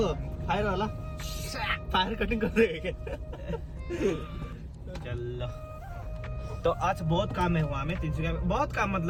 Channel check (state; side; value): identical; both; correlation 1.00